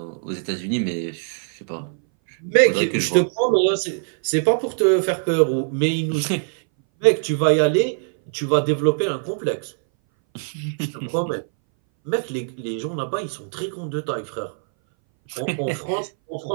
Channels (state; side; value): silent; left; 61 dB below the other